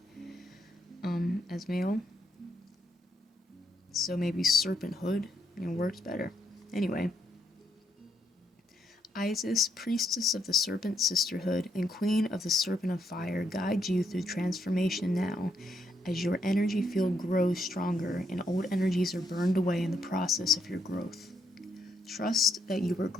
as male. So maybe Serpenthood, works better. Anyway. Isis, Priestess of the Serpent Sisterhood and Queen of the Serpent of Fire, guide you through transformation now, as your energy field grows stronger and old energies are burned away in the process of your growth. Trust that you are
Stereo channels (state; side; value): normal; both; correlation 0.76